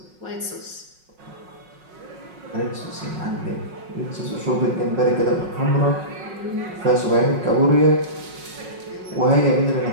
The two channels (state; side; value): late; left; 5.5 ms